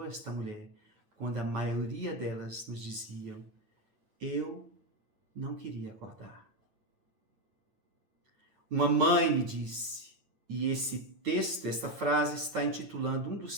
esta mulher quando a maioria delas nos diziam, eu não queria acordar? Uma mãe me disse, e esse texto, esta frase está intitulando um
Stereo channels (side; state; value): left; late; 9.6 ms